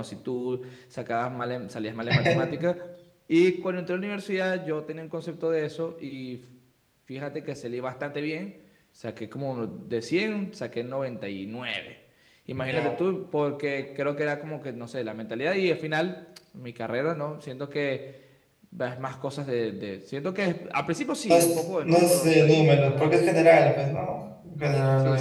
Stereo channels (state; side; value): identical; both; correlation 1.00